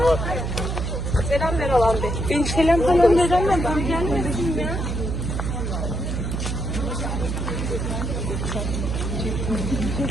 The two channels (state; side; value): noise; right; hum, 2 dB below the sound